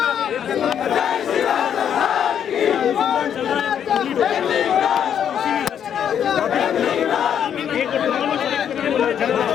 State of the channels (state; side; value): quieter; right; 8.8 dB